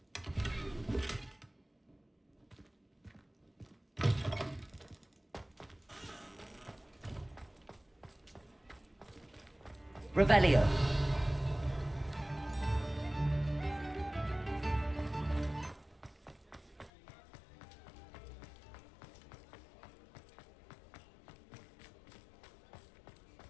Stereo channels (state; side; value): drops out; right; at 16.9 s